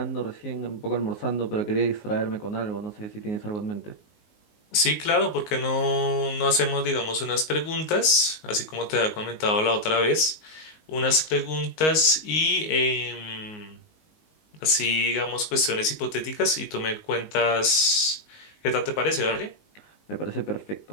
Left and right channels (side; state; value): right; late; 19 ms